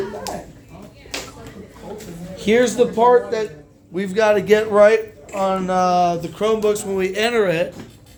Here's the part that we've got to get right on the Chromebooks when we enter it.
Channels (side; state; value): both; identical; correlation 1.00